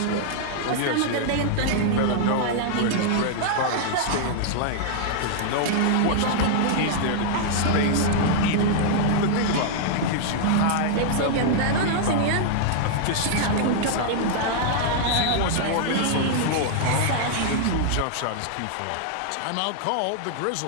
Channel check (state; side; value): different; both; correlation -0.01